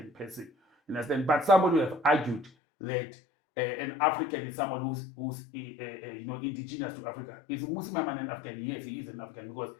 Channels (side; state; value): right; drops out; at 2.5 s